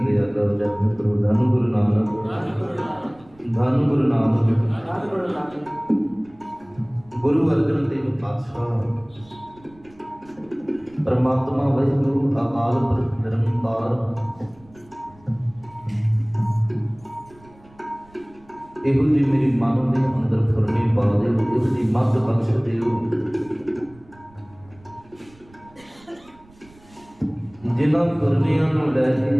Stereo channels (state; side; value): noise; right; rumble, 27 dB below the sound